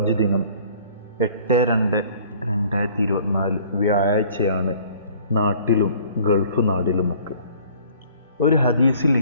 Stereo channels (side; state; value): both; inverted; correlation -0.53